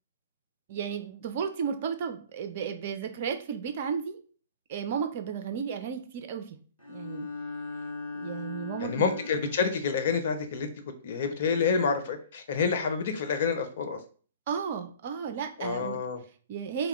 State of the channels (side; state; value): both; inverted; correlation -0.44